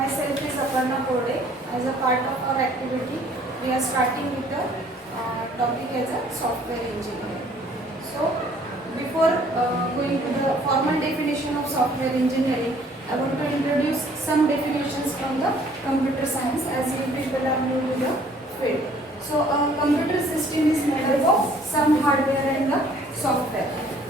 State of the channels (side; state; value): both; normal; correlation 0.58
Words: is Aparna Kode. As a part of our activity, we are starting with the topic as a software engineer. So, before going to the formal definition of software engineering, I want to introduce some definitions from the computer science as you people are new to the field. So, a computer system is made up of some hardware and the software.